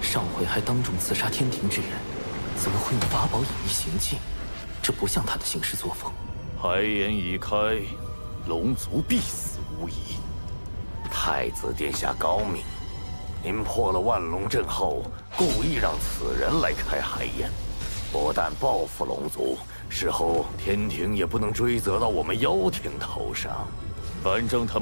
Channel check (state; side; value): inverted; both; correlation -1.00